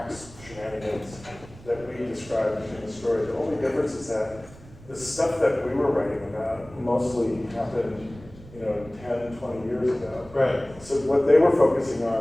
shenanigans that we described in the story. The only difference is that the stuff that we were writing about mostly happened, 10, 20 years ago. Right. So what they were focusing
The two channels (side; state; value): right; noise; rumble, 20 dB below the sound